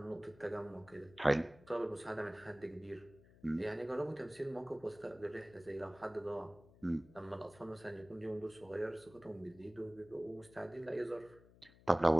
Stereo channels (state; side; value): noise; left; hum, 24 dB below the sound